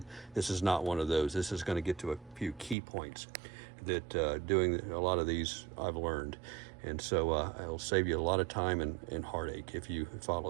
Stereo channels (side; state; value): left; drops out; at 2.8 s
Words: This is not one of those. This is going to get to a few key points that doing a lot of these I've learned. And so it'll save you a lot of time and heartache if you